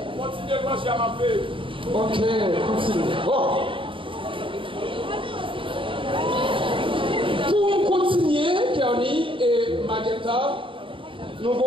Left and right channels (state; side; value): late; left; 0.25 ms